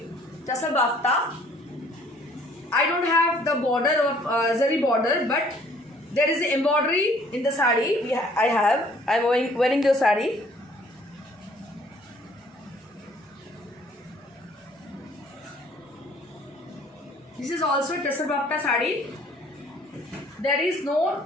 Tasal Bafta. I don't have the border of zari border, but there is the embroidery in the saree. I am wearing the saree. This is also Tasal Bafta saree. There is no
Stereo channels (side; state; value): both; normal; correlation 0.58